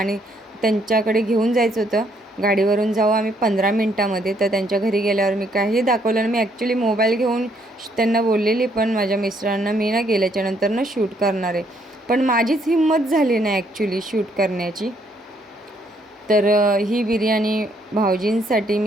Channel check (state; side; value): normal; both; correlation 0.69